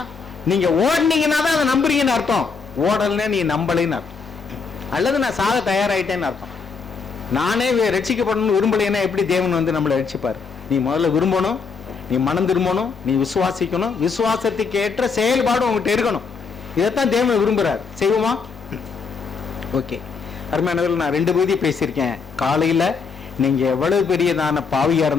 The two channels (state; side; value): quieter; right; 5.2 dB